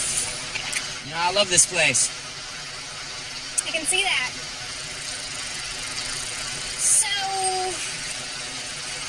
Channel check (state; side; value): identical; both; correlation 1.00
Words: You know, I love this place. I can see that. So,